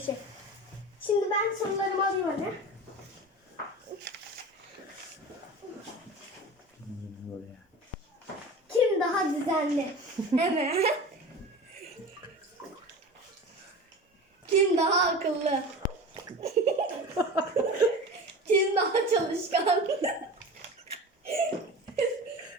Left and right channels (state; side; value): normal; both; correlation 0.33